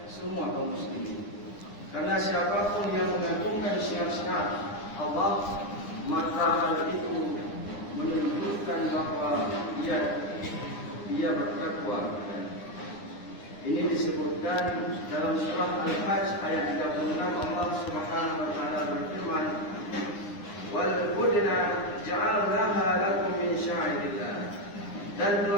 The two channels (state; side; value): late; right; 9.9 ms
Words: semua kaum muslimin. Karena siapapun yang mengagungkan syiar-syiar Allah, maka hal itu menunjukkan bahawa dia bertakwa. Ini disebutkan dalam surah Al-Hajj ayat 36. Allah Subhanahu wa taala berfirman, "Wal budna ja'alnaha lakum min sya'irillah." Dan